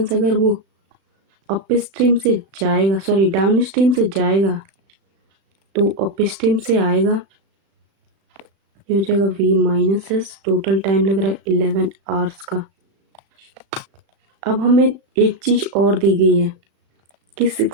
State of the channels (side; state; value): left; late; 36 ms